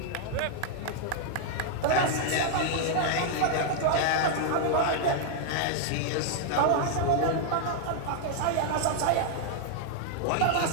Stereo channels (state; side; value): different; both; correlation -0.01